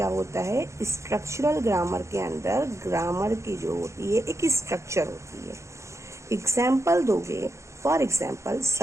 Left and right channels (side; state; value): left; late; 0.14 ms